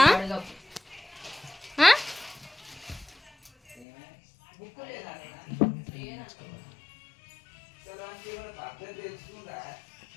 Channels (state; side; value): drops out; right; at 3.9 s